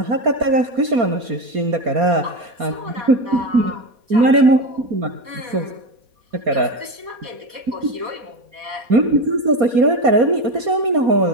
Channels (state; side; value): late; left; 4.2 ms